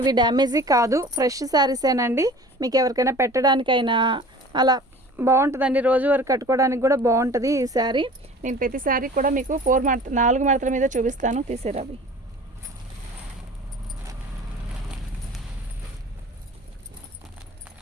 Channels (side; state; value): both; normal; correlation 0.43